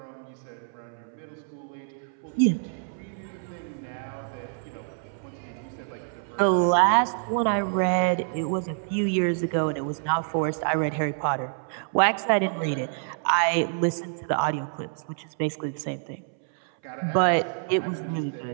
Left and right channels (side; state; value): left; silent; 60 dB below the other